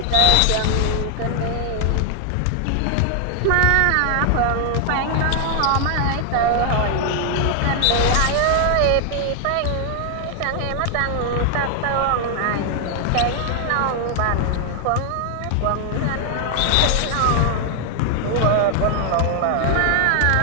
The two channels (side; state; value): both; different; correlation 0.00